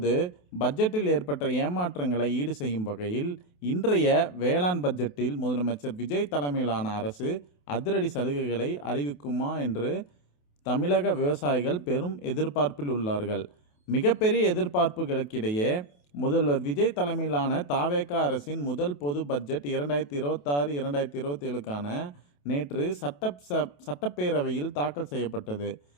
பட்ஜெட்டில் ஏற்பட்ட ஏமாற்றங்களை ஈடு செய்யும் வகையில் இன்றைய வேளாண் பட்ஜெட்டில் முதலமைச்சர் விஜய் தலைமையிலான அரசு அதிரடி சலுகைகளை அறிவிக்குமா என்று தமிழக விவசாயிகள் பெரும் எதிர்பார்ப்பில் உள்ளார்கள். மிகப்பெரிய எதிர்பார்ப்புகளுக்கிடையே முதல்வர் விஜய் தலைமையிலான தாவேகா அரசின் முதல் பொது பட்ஜெட் 2026-2027க்கான நேற்று சட்டப்பேரவையில் தாக்கல் செய்யப்பட்டது.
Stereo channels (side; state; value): right; late; 28 ms